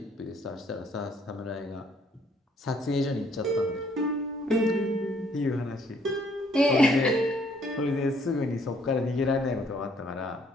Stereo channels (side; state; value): both; normal; correlation 0.64